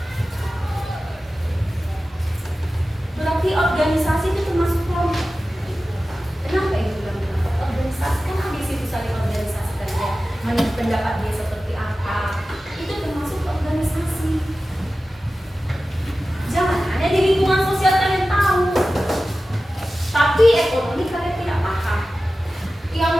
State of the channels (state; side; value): normal; both; correlation 0.95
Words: Berarti organisasi itu termasuk kelompok. Kenapa ibu bilang organisasi? Kan habis itu saling organisasikan ya, menurut pendapat dia seperti apa. Itu termasuk organisasi. Jangan hanya di lingkungan sosial kalian tahu, tapi ekonomi kalian tidak paham. Yang